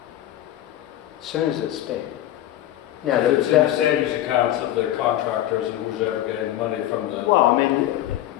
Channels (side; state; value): right; quieter; 13.2 dB